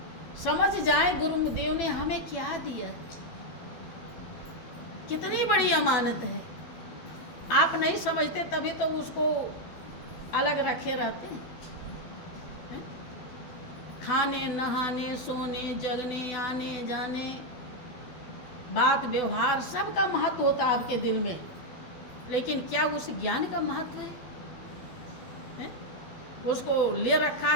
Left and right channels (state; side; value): late; right; 12 ms